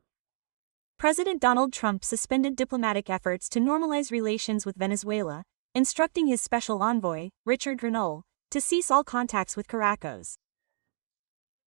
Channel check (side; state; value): left; silent; digital silence